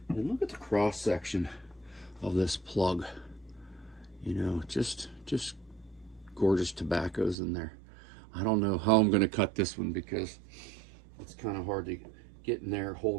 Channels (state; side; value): drops out; left; at 7.4 s